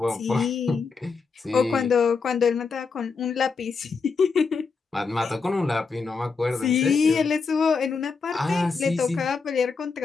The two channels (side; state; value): right; quieter; 4.9 dB